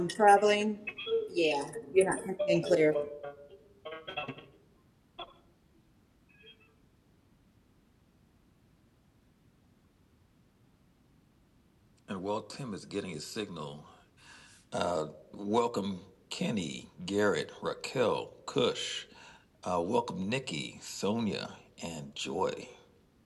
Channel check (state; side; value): identical; both; correlation 1.00